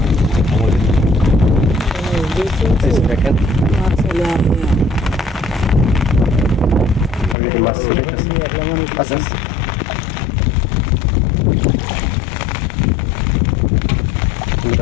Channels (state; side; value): drops out; right; at 7.4 s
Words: দেখেন মাছ আচ্ছা,